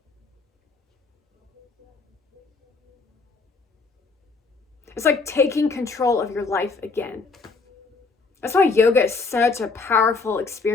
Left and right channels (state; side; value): quieter; right; 4.3 dB